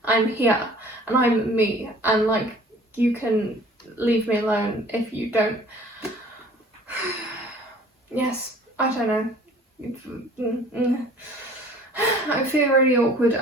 I'm here and I'm me, and like you can leave me alone if you don't. Yes, I don't know. I feel really awkward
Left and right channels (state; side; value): normal; both; correlation 0.50